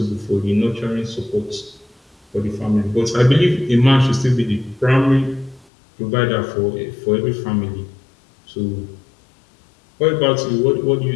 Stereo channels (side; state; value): right; drops out; at 5.7 s